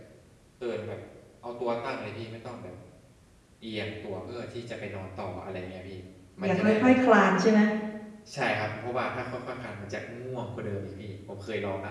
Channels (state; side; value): identical; both; correlation 1.00